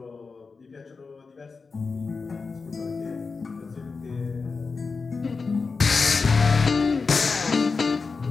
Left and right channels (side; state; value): right; quieter; 4.5 dB